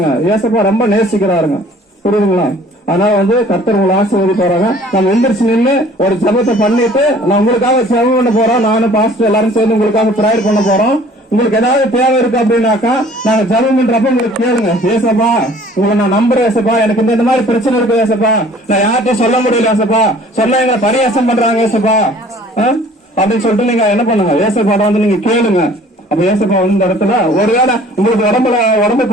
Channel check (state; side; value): normal; both; correlation 0.52